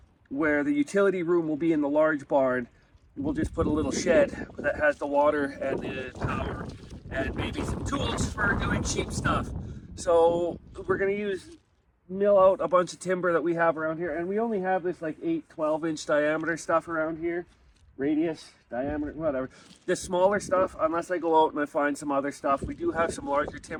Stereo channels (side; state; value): both; identical; correlation 1.00